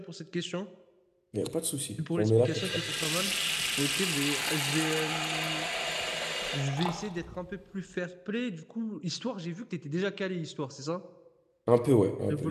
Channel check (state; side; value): identical; both; correlation 1.00